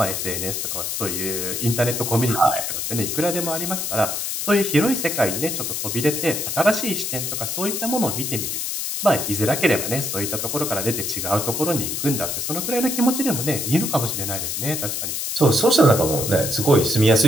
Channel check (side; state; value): left; noise; hiss, 2 dB below the sound